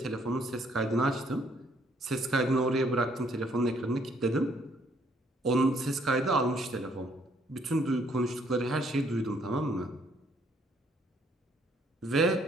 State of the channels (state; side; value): normal; both; correlation 0.66